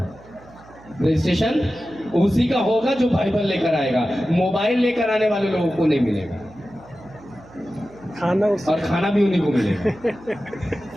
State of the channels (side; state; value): right; noise; hum, 23 dB below the sound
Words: रजिस्ट्रेशन उसी का होगा जो बाइबल लेकर आएगा। मोबाइल लेकर आने वाले लोगों को नहीं मिलेगा। खाना और खाना भी उन्हीं को मिलेगा।